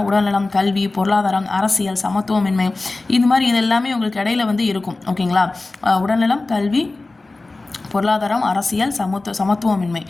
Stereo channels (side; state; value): right; quieter; 3.2 dB